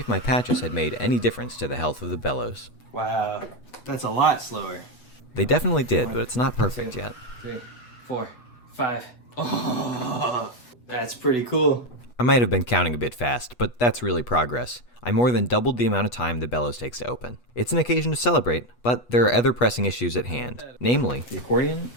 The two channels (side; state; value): right; late; 8.2 ms